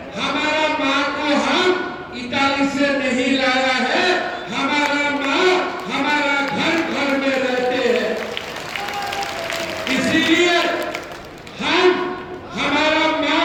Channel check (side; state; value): both; identical; correlation 1.00